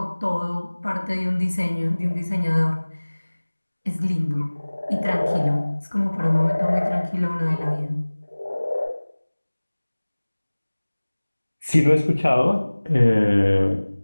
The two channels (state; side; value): inverted; both; correlation -1.00